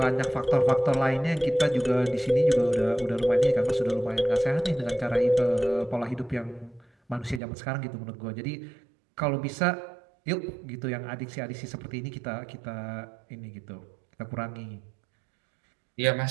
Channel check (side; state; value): left; drops out; at 7.4 s